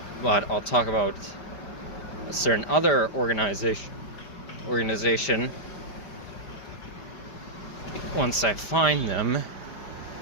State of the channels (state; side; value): late; right; 5.0 ms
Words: but I'll talk about a certain other organization once I find them